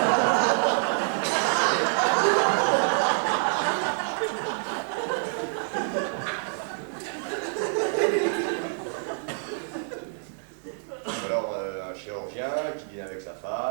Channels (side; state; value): left; silent; digital silence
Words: Alors un chirurgien qui dîne avec sa